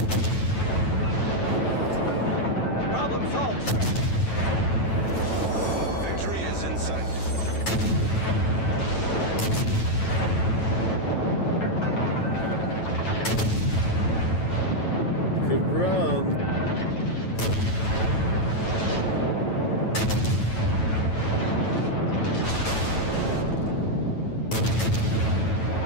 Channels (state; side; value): late; right; 9.1 ms